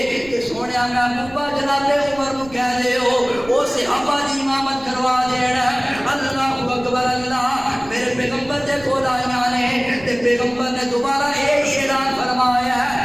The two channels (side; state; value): right; noise; rumble, 20 dB below the sound